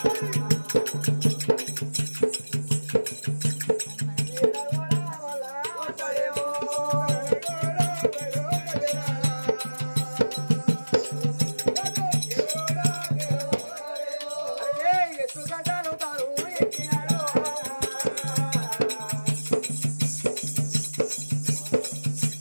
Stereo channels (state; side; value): inverted; both; correlation -1.00